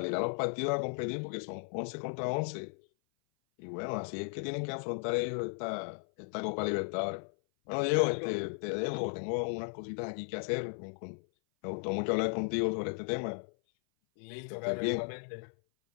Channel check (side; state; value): right; silent; 54 dB below the other